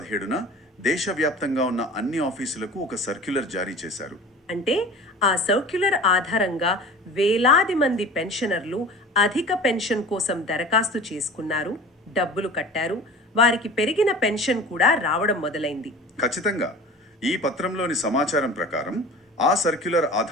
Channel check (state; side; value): normal; both; correlation 0.39